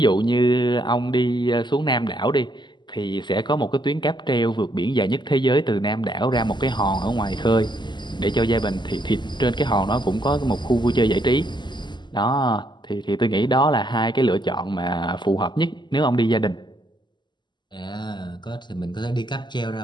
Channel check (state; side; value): late; right; 0.21 ms